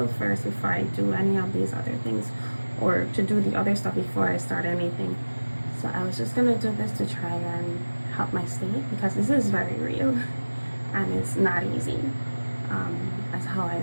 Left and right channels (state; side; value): inverted; both; correlation -1.00